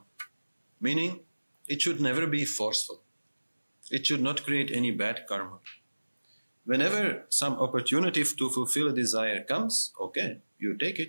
Meaning, it should never be forceful. It should not create any bad karma. Whenever some opportunity to fulfill a desire comes, okay, you take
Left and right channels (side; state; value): both; inverted; correlation -1.00